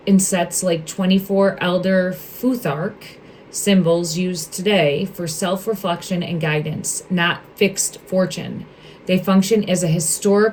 in sets like 24 Elder Futhark symbols used today for self-reflection and guidance, not fixed fortune. They function as a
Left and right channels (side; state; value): both; identical; correlation 1.00